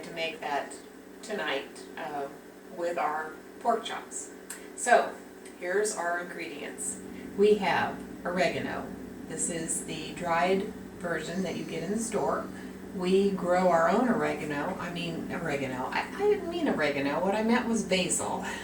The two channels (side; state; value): both; identical; correlation 1.00